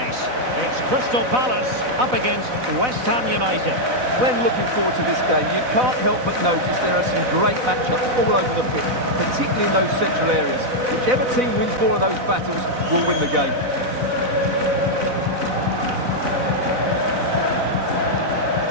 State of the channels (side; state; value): left; late; 4.0 ms